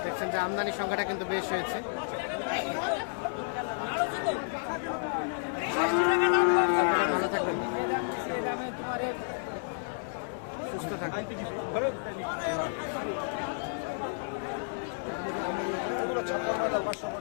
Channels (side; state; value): right; silent; digital silence